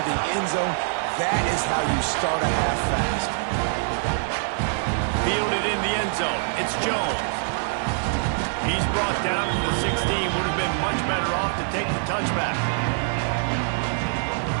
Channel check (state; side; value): silent; left; digital silence